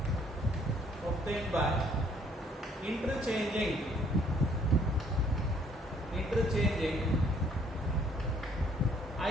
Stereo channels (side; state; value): both; normal; correlation 0.63